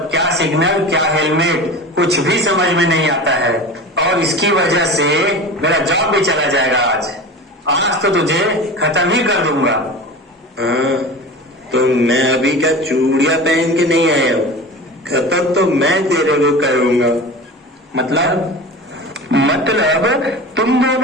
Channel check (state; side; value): normal; both; correlation 0.32